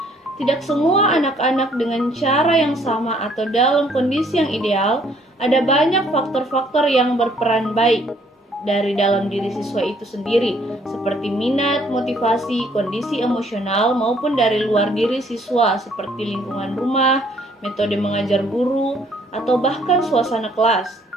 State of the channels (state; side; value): normal; both; correlation 0.63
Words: Tidak semua anak-anak dengan cara yang sama atau dalam kondisi yang ideal, ada banyak faktor-faktor yang berperan baik dari dalam diri siswa itu sendiri, seperti minat, motivasi, kondisi emosional, maupun dari luar diri siswa, seperti lingkungan rumah, metode mengajar guru, atau bahkan suasana kelas.